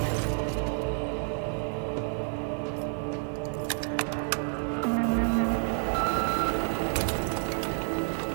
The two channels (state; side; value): silent; left; 56 dB below the other